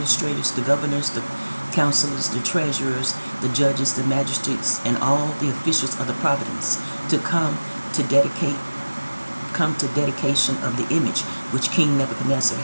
the governors, the counselors, the treasurers, the judges, the magistrates, and all the officials of the province to come to dedication of the image which King Nebuchadnezzar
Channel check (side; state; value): both; inverted; correlation -1.00